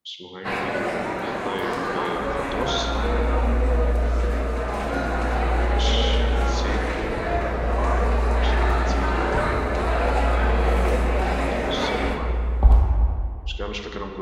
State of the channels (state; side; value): identical; both; correlation 1.00